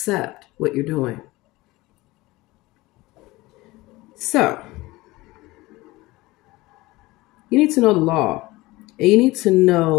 what you're doing. So, you need to know the law, and you need to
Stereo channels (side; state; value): right; quieter; 20.1 dB